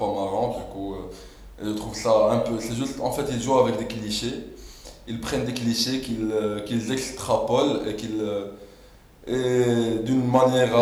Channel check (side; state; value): both; identical; correlation 1.00